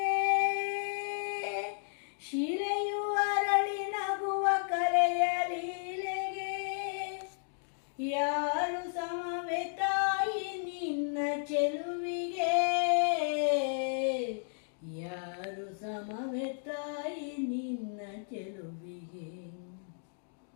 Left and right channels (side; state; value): right; silent; digital silence